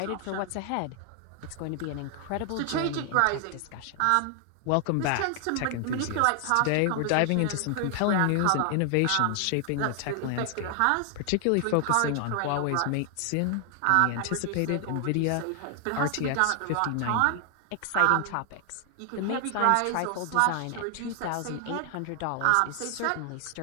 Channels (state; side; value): different; both; correlation 0.00